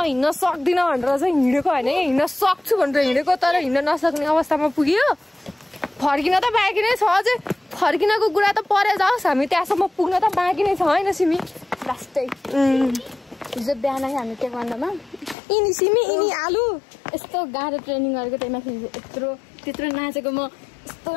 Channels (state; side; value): drops out; right; at 15.4 s